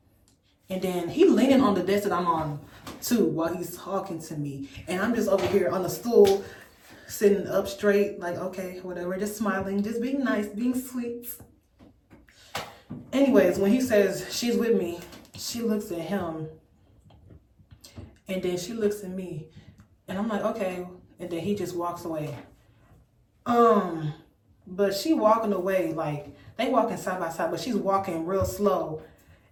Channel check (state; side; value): identical; both; correlation 1.00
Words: And then he leaning on the desk that I'm on too while he's talking to me. And I'm just over here on the stool, sitting up straight, like, okay, whatever, just smiling, just being nice, being sweet. Anyways, when he says she's with me, she looks at him and then she looks at me and I'm like, okay. And then he just walks away. But she walking away, like they walking side by side, but she's walking real slow.